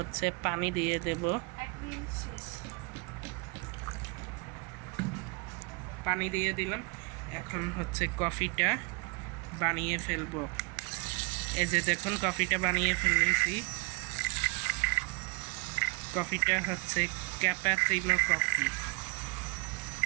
পানি দিয়ে দেব, পানি দিয়ে দিলাম। এখন হচ্ছে কফিটা বানিয়ে ফেলবো। এই যে দেখুন কফিটা বানিয়ে ফেলেছি। কফিটা হচ্ছে ক্যাপাচিনো কফি।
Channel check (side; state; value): left; quieter; 31.5 dB